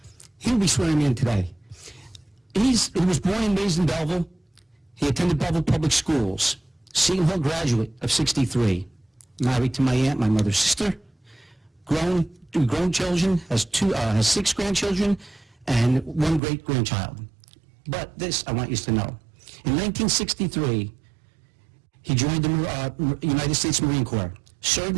he'll be swearing me in today. He was born and raised in Belleville. He attended Belleville Public Schools, Seton Hall graduate of '63, married to my aunt, my mother's sister, grown children, has 6 grandchildren, and 1 great-grandchild. But this I want you to know. In 1963, he joined the United States Marine Corps,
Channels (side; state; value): left; drops out; at 16.4 s